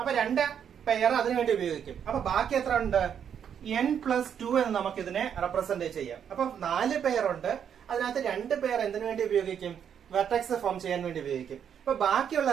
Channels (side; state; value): left; quieter; 8.3 dB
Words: 2 പെയർ അതിനുവേണ്ടി ഉപയോഗിക്കും. അപ്പൊ ബാക്കി എത്ര ഉണ്ട്? n+2 എന്ന് നമുക്ക് ഇതിനെ റെപ്രസെന്റ് ചെയ്യാം. അപ്പൊ 4 പെയർ ഉണ്ട്. അതിനകത്ത് 2 പെയർ എന്തിനു വേണ്ടി ഉപയോഗിക്കും? വെർട്ടെക്സ് ഫോം ചെയ്യാൻ വേണ്ടി ഉപയോഗിക്കും. അപ്പൊ ബാക്കിയുള്ള